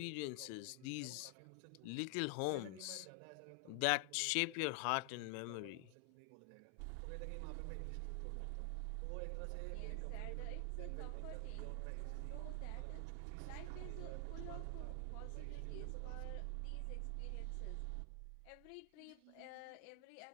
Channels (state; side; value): different; both; correlation 0.00